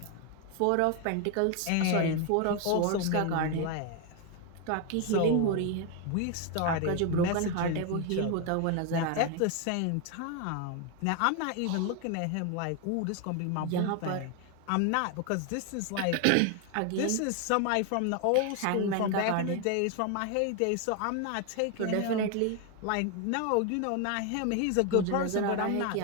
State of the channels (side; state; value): both; different; correlation 0.01